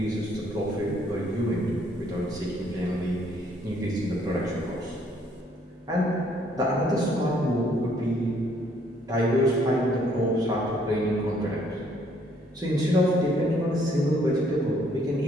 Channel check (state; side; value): normal; both; correlation 0.66